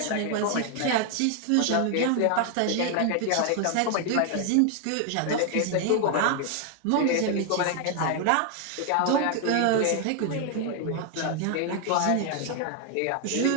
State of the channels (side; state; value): both; different; correlation 0.00